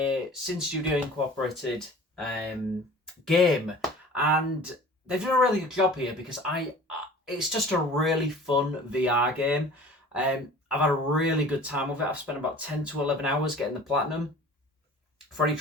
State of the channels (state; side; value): normal; both; correlation 0.44